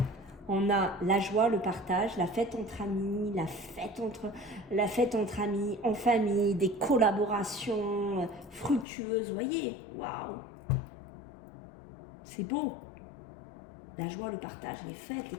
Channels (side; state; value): right; drops out; at 8.8 s